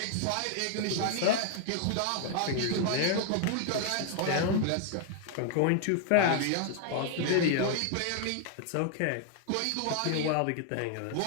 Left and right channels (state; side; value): different; both; correlation 0.00